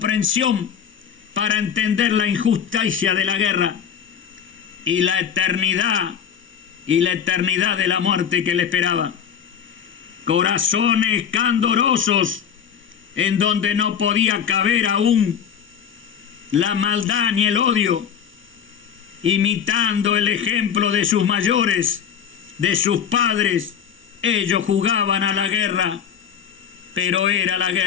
para entender la injusticia de la guerra y la eternidad de la muerte que le esperaba. Corazones candorosos en donde no podía caber aún la maldad ni el odio, imitando el ejemplo de sus mayores, de sus padres. Ellos jugaban a la guerra, pero era la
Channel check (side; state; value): right; quieter; 8.0 dB